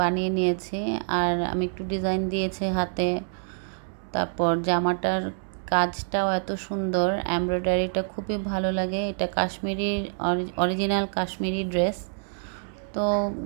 বানিয়ে নিয়েছি, আর আমি একটু ডিজাইন দিয়েছি হাতে। তারপর জামাটার কাজটাও এত সুন্দর, এমব্রয়ডারিটা খুবই ভালো লাগে। এটা কাশ্মীরি, অরিজিনাল কাশ্মীরি ড্রেস, তো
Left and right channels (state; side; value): silent; left; digital silence